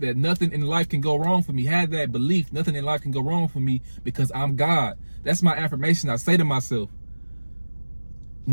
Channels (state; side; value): inverted; both; correlation -1.00